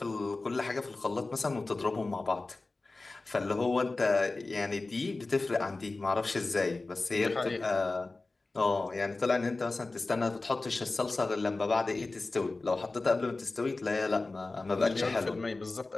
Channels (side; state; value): right; quieter; 3.4 dB